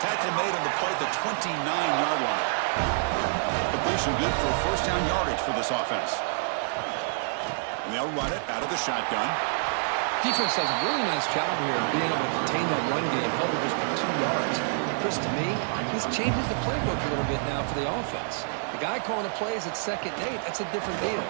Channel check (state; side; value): silent; left; 60 dB below the other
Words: made on the play at the 29-yard line. Completion good for first down yardage for this offense. And they'll run it out of the shotgun. Defense does a really nice job here of being able to contain that run game, helping just for 2 yards. Chris, to me, this changes the playbook a little bit now for the offense. The guy calling the plays at 2nd and 8, that's a different deal.